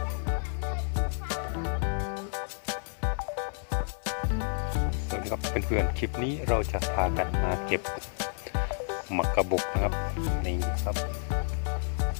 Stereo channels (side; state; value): right; silent; 58 dB below the other